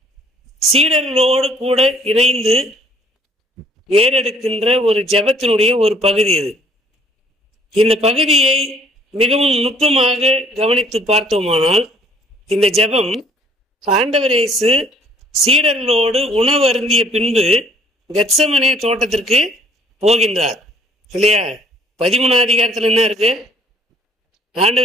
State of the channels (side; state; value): both; normal; correlation 0.59